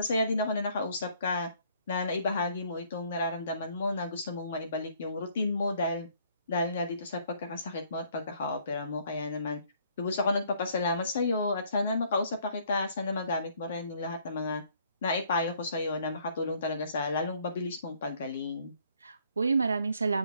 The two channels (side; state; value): both; inverted; correlation -0.63